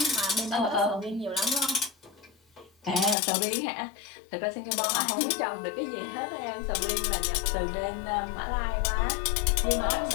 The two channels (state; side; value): drops out; right; at 3.2 s